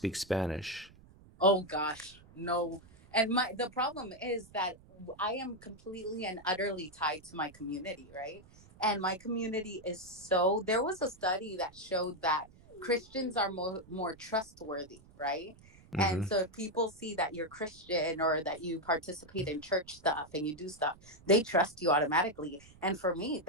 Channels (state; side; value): noise; right; rumble, 24 dB below the sound